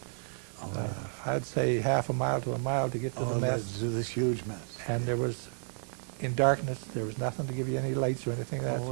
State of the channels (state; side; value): silent; left; digital silence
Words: Oh, I'd say half a mile to a mile to get to the mess. to this huge mess. And there was, in darkness, there was nothing to give you any lights or anything like that, Oh, so